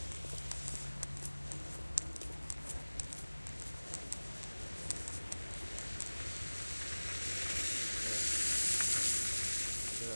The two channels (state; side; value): inverted; both; correlation -1.00